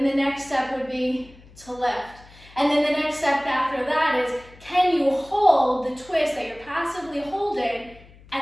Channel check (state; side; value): noise; left; hum, 24 dB below the sound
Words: the next step would be to lift. And then the next step after that is, can you hold the twist that you're passively holding